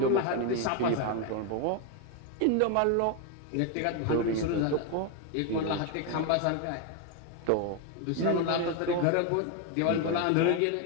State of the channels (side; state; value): both; different; correlation 0.01